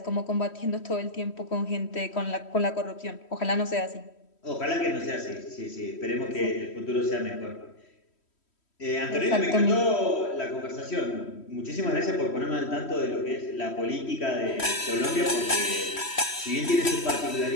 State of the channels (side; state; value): right; late; 3.1 ms